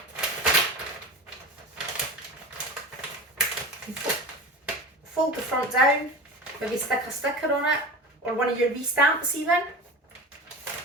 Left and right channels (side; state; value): both; normal; correlation 0.30